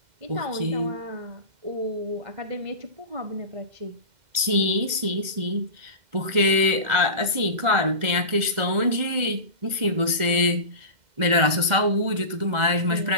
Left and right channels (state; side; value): late; left; 2.0 ms